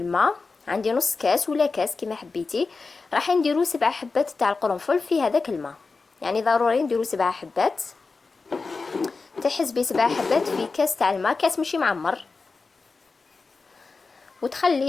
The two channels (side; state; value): right; quieter; 4.2 dB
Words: عندي نص كاس ولا كاس كما حبيتي. راح نديرو 7 حبات تاع القرنفل في هذاك الماء، يعني ضروري نديرو 7 حبات. تحسبي 7 حبات في كاس تاع الماء، كاس ماشي معمر،